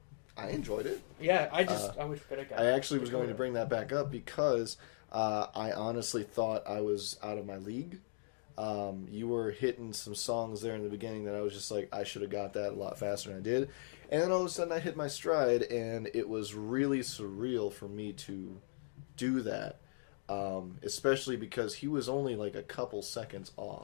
I enjoyed it. Yeah, I wish I got. I actually was going to bring that back up because I honestly thought I was out of my league. You were hitting some songs there in the beginning that I was just like, I should have got that a lot faster than I did. And then all of a sudden I hit my stride, and it was really surreal for me to do that. Especially because he was only like a couple seconds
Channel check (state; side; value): silent; right; digital silence